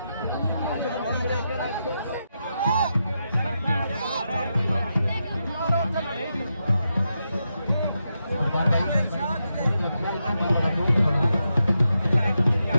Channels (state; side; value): inverted; both; correlation -0.86